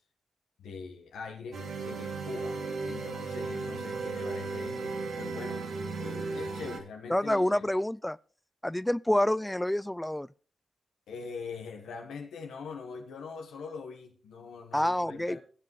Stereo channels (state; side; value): normal; both; correlation 0.94